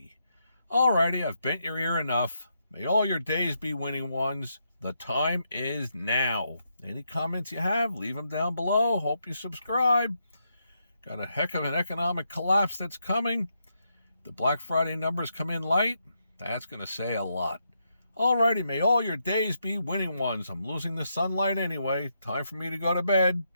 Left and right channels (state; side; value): inverted; both; correlation -0.80